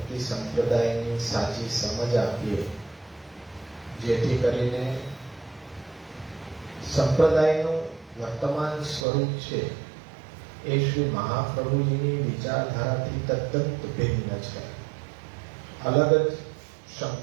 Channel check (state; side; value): drops out; left; at 9.1 s